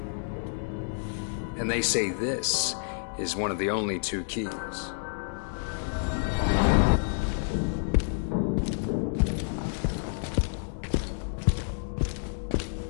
And they say this is one of the only two keys.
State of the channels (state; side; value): silent; right; digital silence